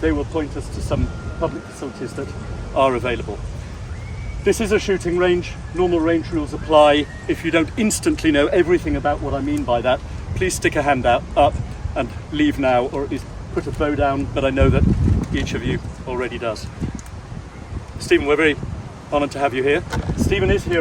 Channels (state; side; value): identical; both; correlation 1.00